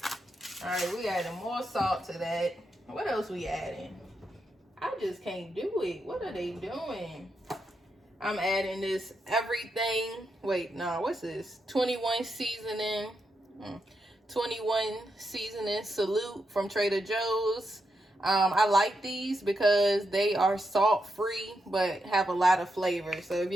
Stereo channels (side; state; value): both; normal; correlation 0.84